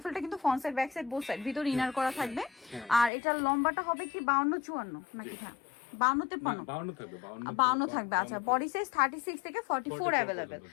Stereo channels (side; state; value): right; drops out; at 3.1 s